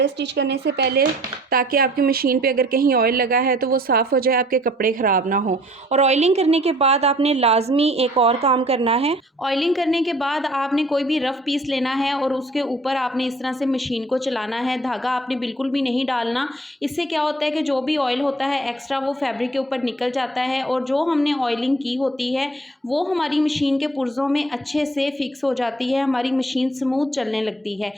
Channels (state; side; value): normal; both; correlation 0.55